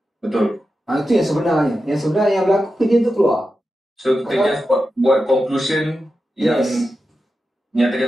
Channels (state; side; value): normal; both; correlation 0.90